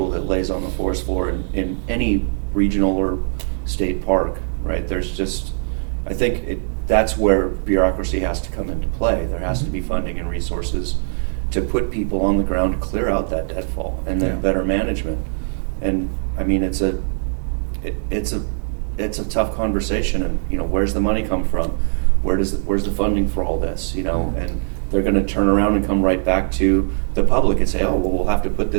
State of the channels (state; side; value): silent; left; 65 dB below the other